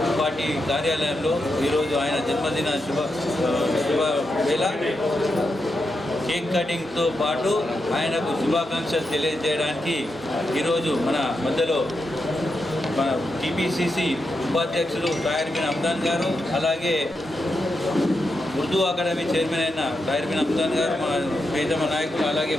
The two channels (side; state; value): both; normal; correlation 0.86